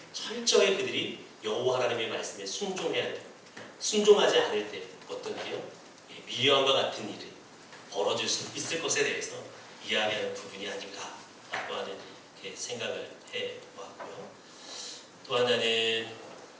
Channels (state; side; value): identical; both; correlation 1.00